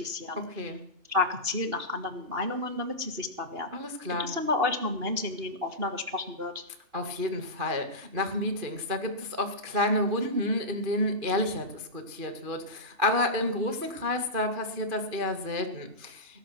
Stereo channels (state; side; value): late; left; 2.8 ms